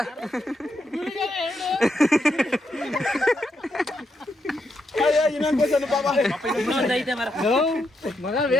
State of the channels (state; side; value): normal; both; correlation 0.81